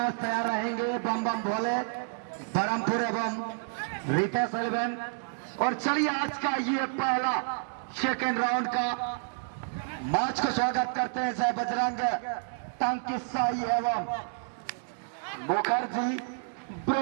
तैयार रहेंगे बम बम भोले बरमपुर एवं रितेश एलेवन। और चलिए आज का ये पहला सेकेंड राउंड का मैच को स्वागत करते हैं जय बजरंग टंकी साई एवं मुखर्जी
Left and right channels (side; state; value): left; silent; digital silence